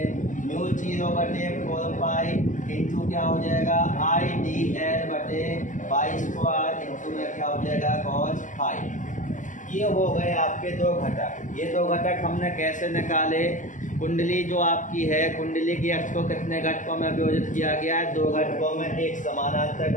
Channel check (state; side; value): late; right; 0.37 ms